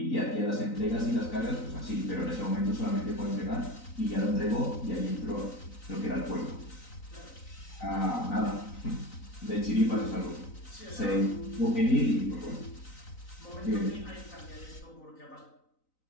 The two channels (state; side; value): late; right; 3.9 ms